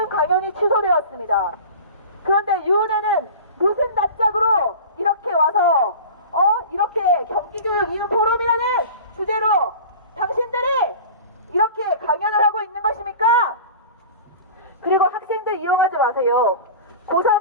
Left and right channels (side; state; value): both; inverted; correlation -0.36